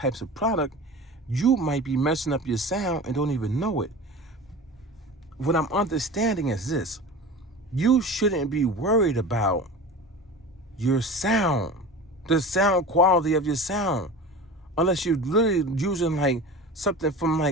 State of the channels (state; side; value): normal; both; correlation 0.34